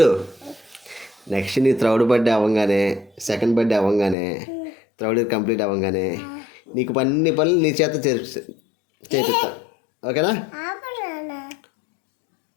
నెక్స్ట్ నీ థర్డ్ బర్త్డే అవ్వగానే, సెకండ్ బర్త్డే అవ్వగానే, థర్డ్ ఇయర్ కంప్లీట్ అవ్వగానే నీకు అన్ని పనులు నీ చేత చేపిస్తా. ఓకేనా?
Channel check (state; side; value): drops out; right; at 4.2 s